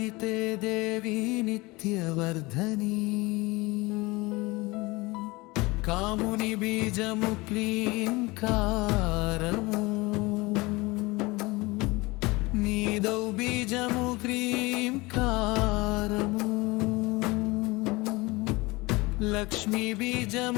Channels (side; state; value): right; quieter; 23.1 dB